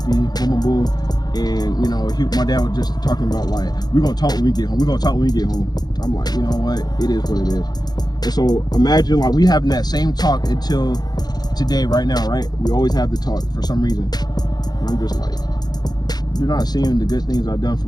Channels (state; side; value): late; right; 0.19 ms